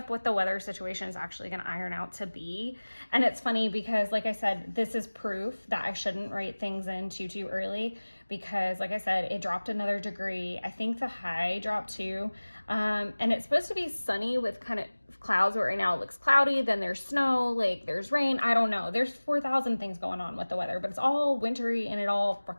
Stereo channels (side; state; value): both; inverted; correlation -1.00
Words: what the weather situation is actually going to iron out to be, and it's funny because like I said, this is proof that I shouldn't write things in too early, because like I said, it dropped another degree. I think the high dropped too. And it's supposed to be sunny with kind of clouds, but right now it looks cloudy, then there's snow, like there's rain. I don't know. There's 4,000 things going on with the weather, but it's all wintry and it all